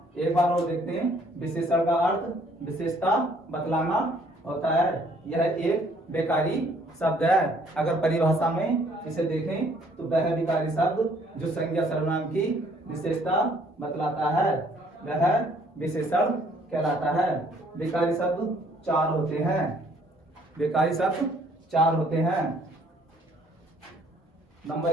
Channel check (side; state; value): both; normal; correlation 0.62